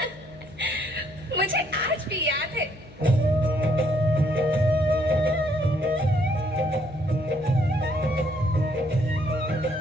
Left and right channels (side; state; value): left; noise; hum, 21 dB below the sound